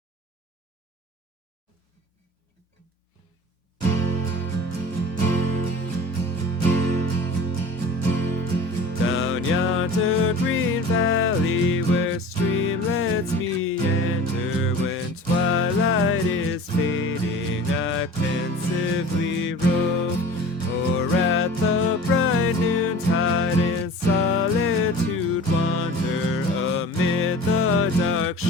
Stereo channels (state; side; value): normal; both; correlation 0.40